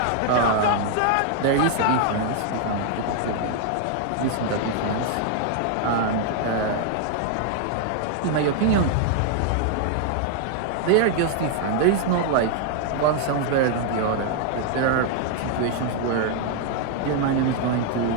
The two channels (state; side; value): different; both; correlation 0.00